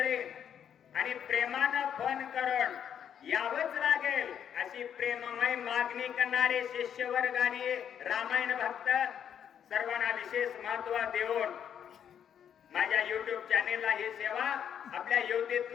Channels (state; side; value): quieter; right; 8.8 dB